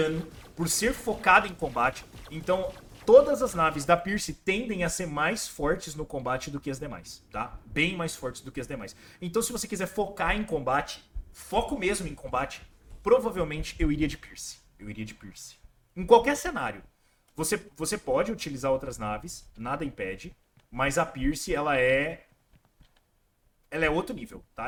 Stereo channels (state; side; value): identical; both; correlation 1.00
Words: por ser focada em combate. Então, todas as naves da Pierce tendem a ser mais fortes no combate do que as demais, tá? Bem mais fortes do que as demais. Então, se você quiser focar em combate, foco mesmo em combate, provavelmente eu iria de Pierce. Eu iria de Pierce. Em qualquer cenário. Você pode utilizar outras naves, nada impede, mas a Pierce, ela é outro nível,